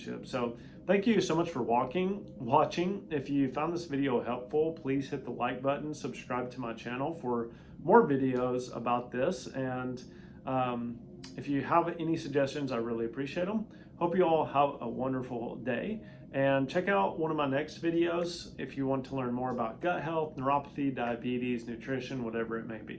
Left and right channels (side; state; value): both; identical; correlation 1.00